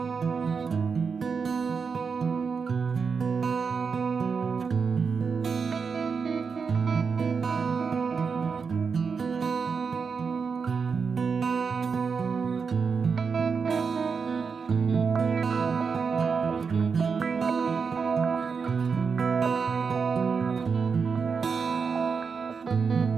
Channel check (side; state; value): left; quieter; 5.6 dB